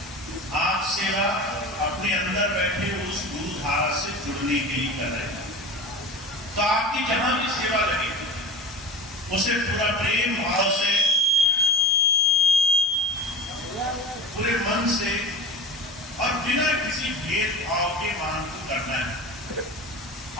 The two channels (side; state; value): both; normal; correlation 0.32